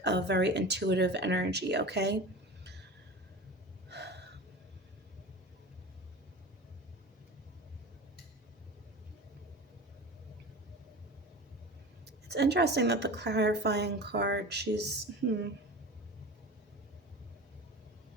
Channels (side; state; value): both; normal; correlation 0.33